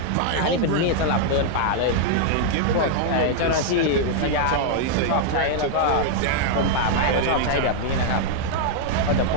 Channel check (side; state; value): both; different; correlation -0.01